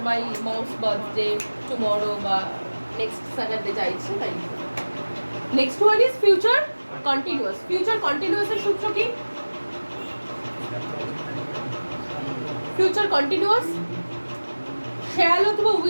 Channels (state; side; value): inverted; both; correlation -1.00